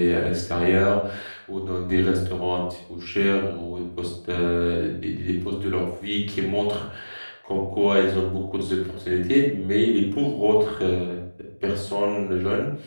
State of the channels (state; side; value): inverted; both; correlation -1.00